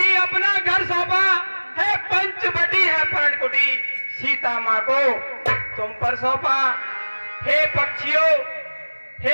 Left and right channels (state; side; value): inverted; both; correlation -1.00